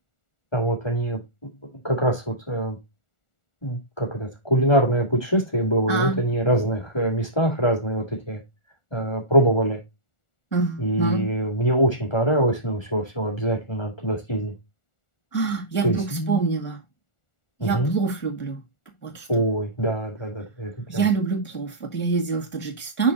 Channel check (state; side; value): late; right; 1.4 ms